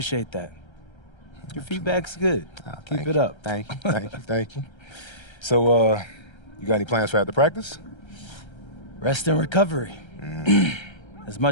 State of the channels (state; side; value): late; right; 1.3 ms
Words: that. Your feedback's good. Keep it up. Thank you, thank you, thank you. So, you got any plans for after practice? Rest and recovery. As